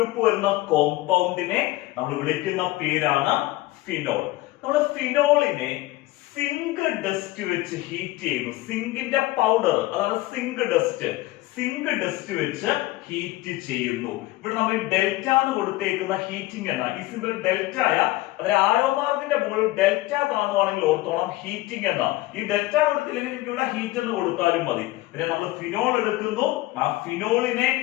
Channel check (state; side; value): quieter; right; 18.5 dB